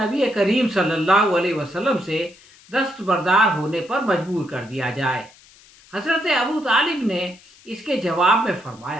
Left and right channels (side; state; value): left; noise; hiss, 26 dB below the sound